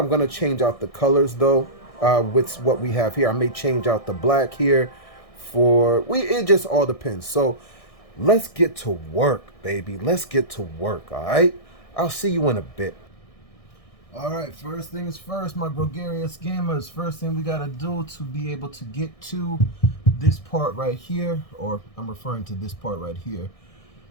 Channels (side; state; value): right; late; 1.6 ms